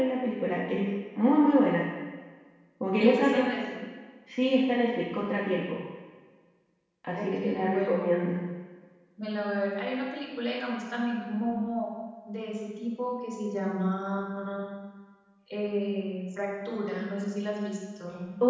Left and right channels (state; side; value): identical; both; correlation 1.00